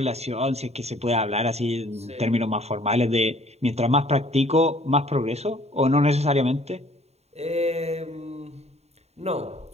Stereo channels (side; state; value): left; late; 0.31 ms